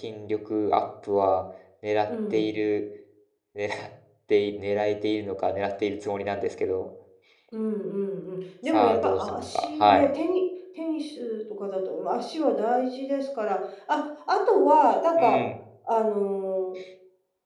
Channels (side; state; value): both; identical; correlation 1.00